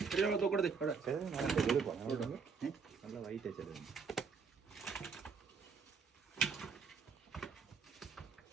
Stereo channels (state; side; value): quieter; left; 5.5 dB